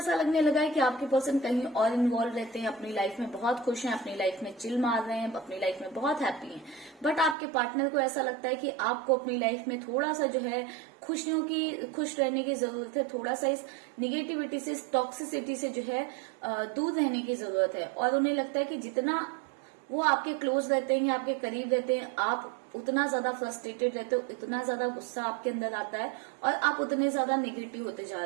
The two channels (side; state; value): left; drops out; at 7.4 s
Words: लगने लगा है कि आपके पर्सन कहीं और इन्वॉल्व रहते हैं, अपनी लाइफ में बहुत खुश हैं, अपनी लाइफ में चिल मार रहे हैं, अपनी लाइफ में बहुत हैप्पी हैं। बट आपके पार्टनर को ऐसा लगता है कि आपको अपनी लाइफ में थोड़ा सा जो है खुश रहने की जरूरत है, थोड़ा सा इस निगेटिविटी से, इस टॉक्सिसिटी से जो है दूर रहने की जरूरत है। और उन्हें लगता है कि जितना वो आपके क्लोज रहते हैं या आपके करीब रहते हैं, आप उतना ज्यादा फ्रस्ट्रेटेड रहते हो, इतना ज्यादा गुस्सा आपके अंदर आता है और आप उतने ज्यादा नेगेटिव होते जा